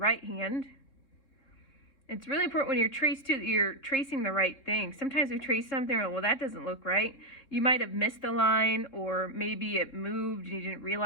hand. It's really important when you're tracing the right thing. Sometimes we trace something, well, that doesn't look right. You might have missed the line, or maybe it moved and you didn't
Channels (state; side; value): late; right; 3.6 ms